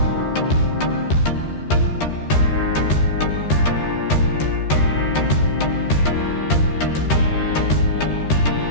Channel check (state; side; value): late; right; 13 ms